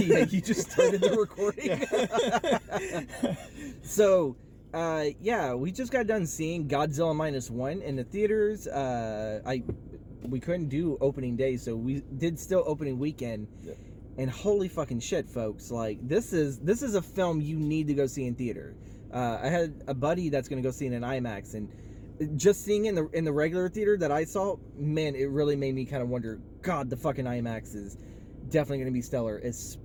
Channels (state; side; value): identical; both; correlation 1.00